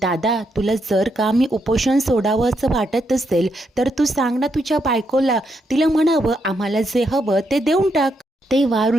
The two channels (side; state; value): both; normal; correlation 0.79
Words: दादा, तुला जर का मी उपोषण सोडावं असं वाटत असेल तर तू सांग ना तुझ्या बायकोला, तिला म्हणावं आम्हाला जे हवं ते देऊन टाक. तेव्हा